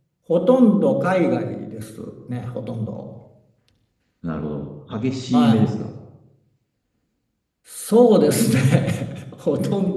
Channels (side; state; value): both; identical; correlation 1.00